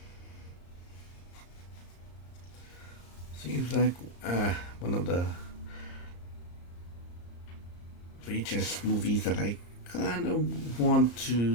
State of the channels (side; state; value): right; late; 34 ms